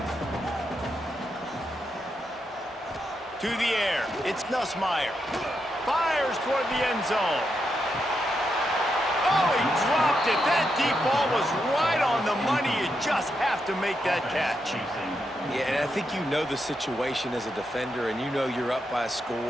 To the air, it's Nussmeier. Fires toward the end zone. Oh, he dropped it. That deep ball was right on the money. You just have to make that catch. Yeah, and I think you know the situation as a defender, and you know you're up by a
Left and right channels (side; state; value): both; normal; correlation 0.83